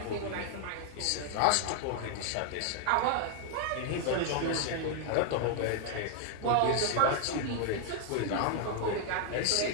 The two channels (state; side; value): different; both; correlation 0.00